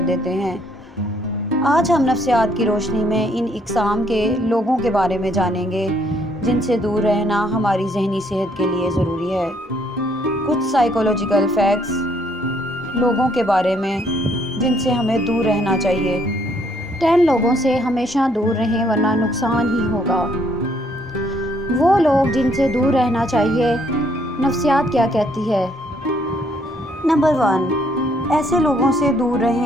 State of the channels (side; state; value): both; normal; correlation 0.68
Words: देते हैं। आज हम नफ्सियात की रोशनी में इन इक़साम के लोगों के बारे में जानेंगे, जिनसे दूर रहना हमारी ज़हनी सेहत के लिए ज़रूरी है। कुछ साइकोलॉजिकल फैक्ट्स लोगों के बारे में जिनसे हमें दूर रहना चाहिए। 10 लोगों से हमेशा दूर रहें वरना नुकसान ही होगा। वो लोग जिनसे दूर रहना चाहिए। नफ्सियात क्या कहती है? नंबर 1, ऐसे लोगों से दूर